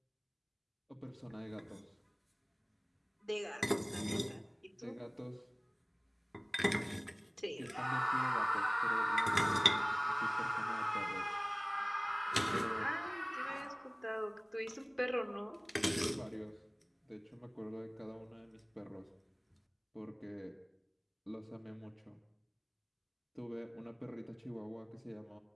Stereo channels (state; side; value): identical; both; correlation 1.00